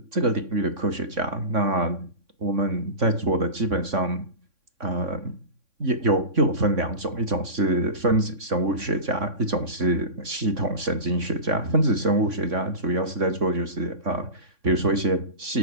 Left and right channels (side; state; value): left; late; 3.6 ms